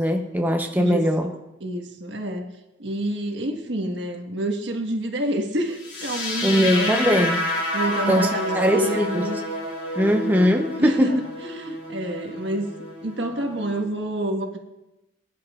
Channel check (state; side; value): normal; both; correlation 0.63